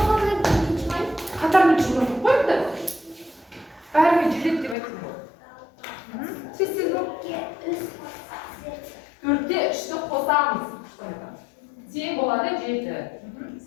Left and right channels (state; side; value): drops out; right; at 4.8 s